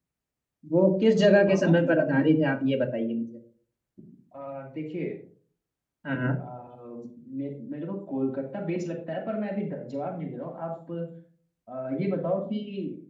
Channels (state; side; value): identical; both; correlation 1.00